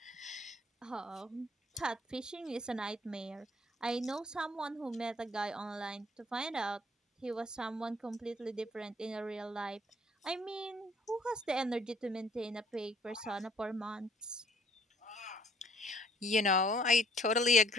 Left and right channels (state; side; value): normal; both; correlation 0.61